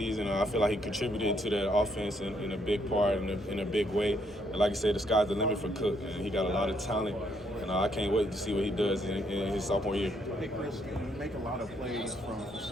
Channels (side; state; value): both; normal; correlation 0.72